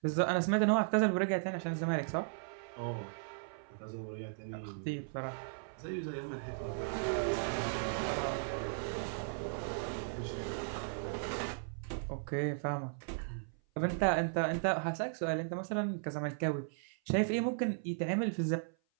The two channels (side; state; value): left; silent; 53 dB below the other